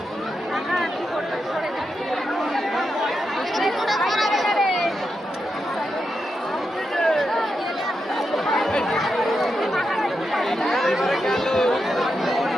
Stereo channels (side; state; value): both; normal; correlation 0.86